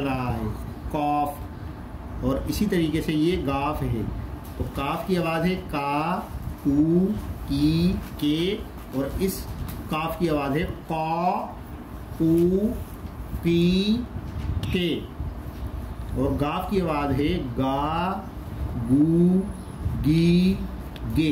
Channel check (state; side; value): identical; both; correlation 1.00